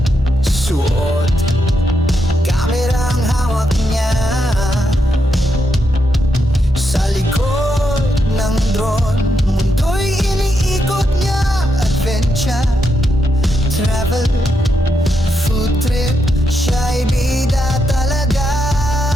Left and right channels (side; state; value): both; normal; correlation 0.82